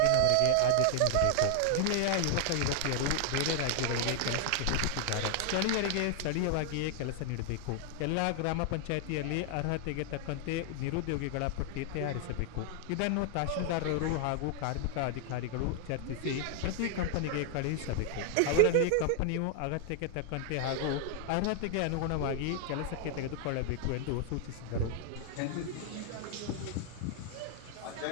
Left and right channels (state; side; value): different; both; correlation 0.00